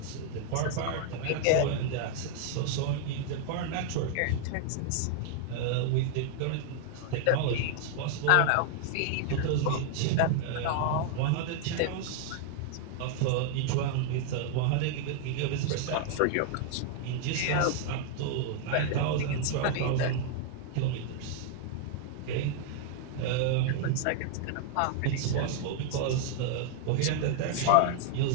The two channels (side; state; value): both; different; correlation 0.00